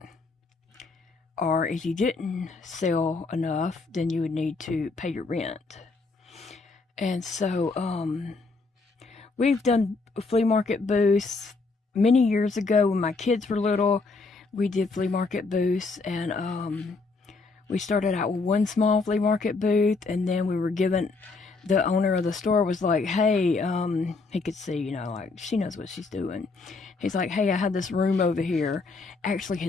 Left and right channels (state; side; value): quieter; right; 4.0 dB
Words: Or if you didn't sell enough, then you would need to pay your rent. And so we've done flea market booths many years ago when my kids were little. We did flea market booths, and we started out with one small flea market booth, and then we were given, the owner of the store was like, hey, he could see, you know, like, she knows what she's doing. He's like, hey, I had this room over here. Actually,